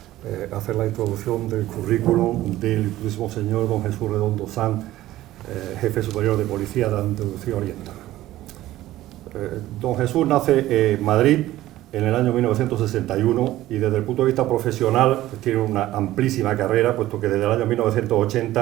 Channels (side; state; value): left; quieter; 15.2 dB